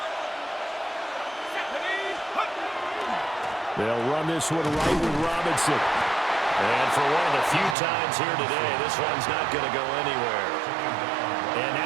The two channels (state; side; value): drops out; left; at 7.8 s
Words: They'll run this one right with Robinson. And for one of the few times here today, this one's not going to go anywhere. And